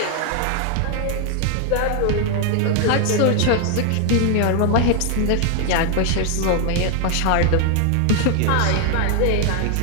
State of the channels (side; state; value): both; different; correlation 0.00